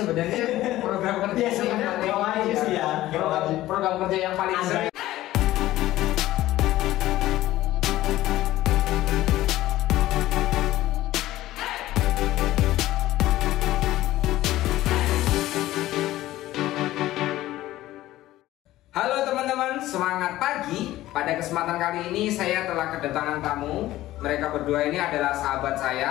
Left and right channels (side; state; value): right; quieter; 15.5 dB